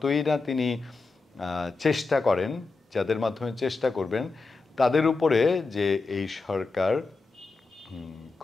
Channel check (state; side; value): quieter; right; 3.9 dB